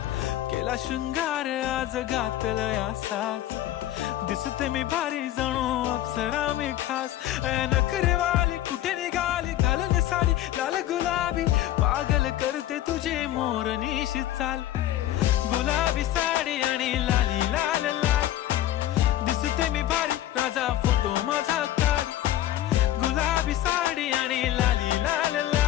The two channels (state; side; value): quieter; right; 13.3 dB